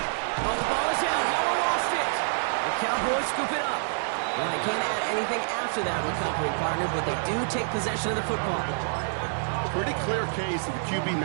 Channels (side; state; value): left; silent; 59 dB below the other